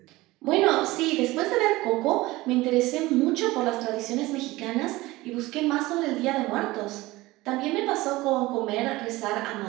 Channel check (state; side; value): quieter; left; 19.6 dB